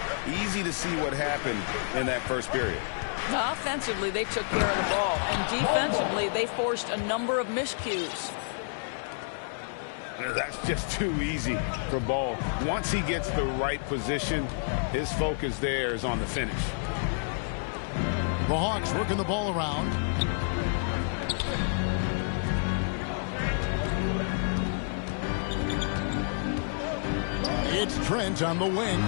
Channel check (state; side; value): silent; right; 58 dB below the other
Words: Easy to see what happened in that first period. Offensively, they took care of the ball, and defensively, they forced a number of miscues. That's just too easy for Ball. Once he gets the right position, his focus there is on the finish. The Hawks working the ball around. It's Trent on the wing.